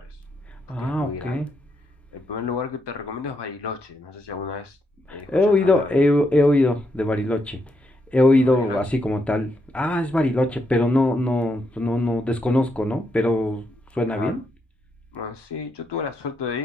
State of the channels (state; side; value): normal; both; correlation 0.80